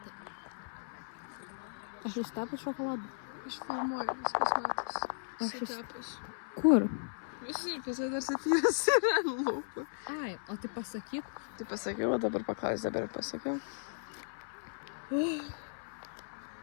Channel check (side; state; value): right; silent; 54 dB below the other